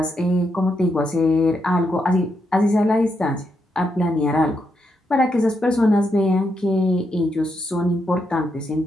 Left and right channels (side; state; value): both; normal; correlation 0.81